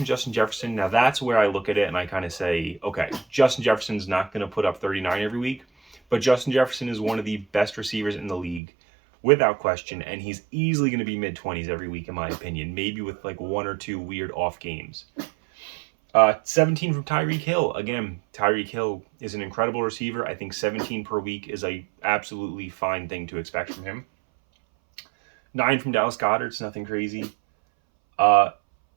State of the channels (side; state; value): left; drops out; at 8.6 s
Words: Justin Jefferson. Now that's where I look at it and I kind of say, okay, Justin Jefferson's not going to put up 39 every week, but Justin Jefferson is one of the best receivers in the league without question, and he's easily going to be mid-20s every week in my opinion, maybe with like 1 or 2 weird off games. 17 from Tyreek Hill. Again, Tyreek Hill is an incredible receiver. I think 17 per week is a absolutely fine thing to expect from him. 9 from Dallas Goedert. It's nothing crazy.